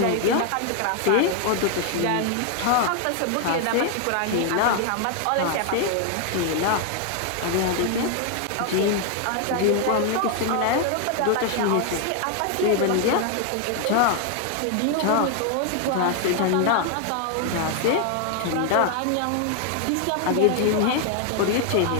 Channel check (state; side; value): different; both; correlation 0.00